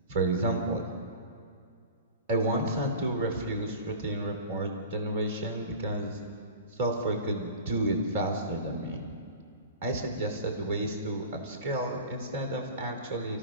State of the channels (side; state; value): both; inverted; correlation -0.36